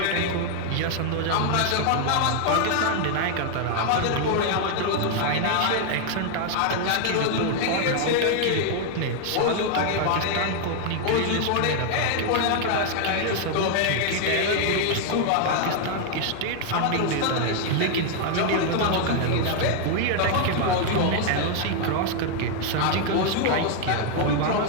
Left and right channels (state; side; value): different; both; correlation 0.00